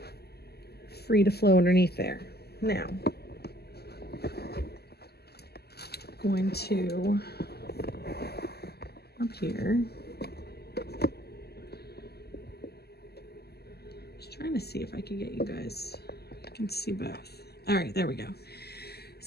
to flow underneath there. Now, I'm going to up here. Just trying to see if I can get you guys. I can see both. All right, there we go.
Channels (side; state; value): right; late; 0.46 ms